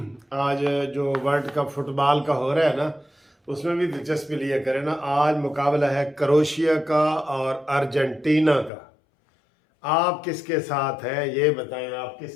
आज जो वर्ल्ड कप फुटबॉल का हो रहा है ना, उसमें भी दिलचस्पी लिया करें ना। आज मुकाबला है क्रोएशिया का और अर्जेंटीना का। आप किसके साथ हैं ये बताएं, आप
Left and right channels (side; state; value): right; drops out; at 8.7 s